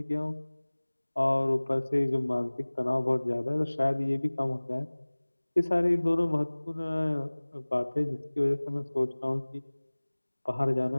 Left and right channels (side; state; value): both; inverted; correlation -1.00